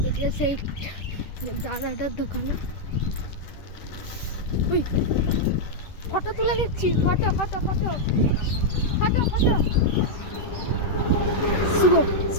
সেই দাদাটার দোকানে ওই ফটো তুলে নিচ্ছি, ফটো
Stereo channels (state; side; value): late; right; 10 ms